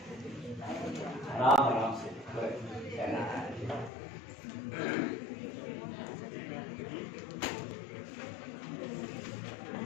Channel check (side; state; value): right; drops out; at 3.9 s